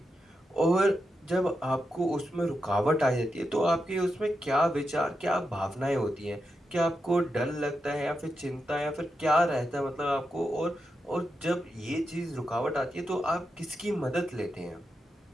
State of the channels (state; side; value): normal; both; correlation 0.87